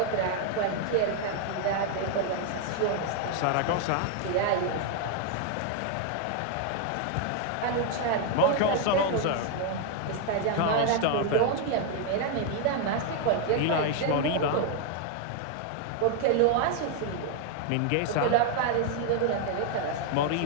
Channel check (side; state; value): both; different; correlation 0.00